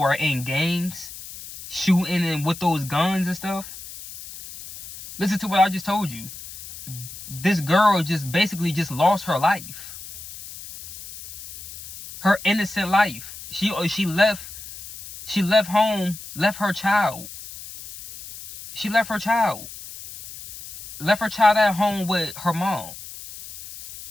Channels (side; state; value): left; noise; hiss, 14 dB below the sound